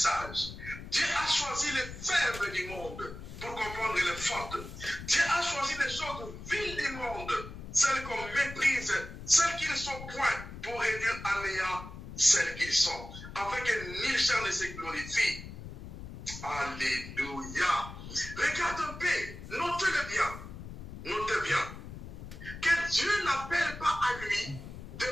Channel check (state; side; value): noise; left; rumble, 12 dB below the sound